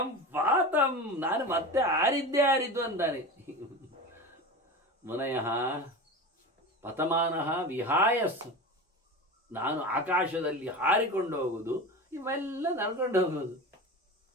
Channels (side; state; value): both; normal; correlation 0.28